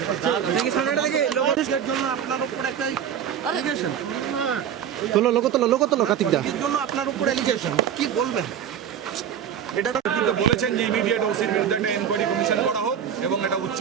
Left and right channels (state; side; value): quieter; left; 8.8 dB